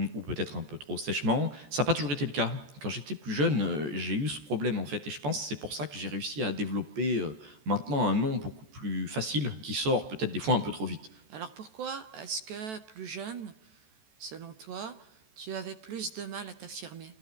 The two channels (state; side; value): late; left; 14 ms